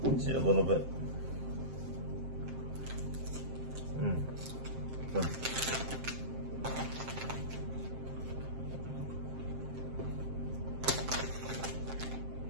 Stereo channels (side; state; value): left; late; 7.6 ms